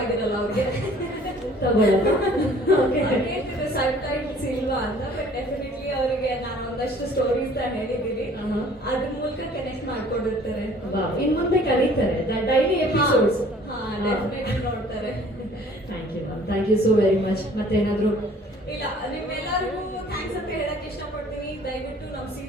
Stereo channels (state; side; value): normal; both; correlation 0.53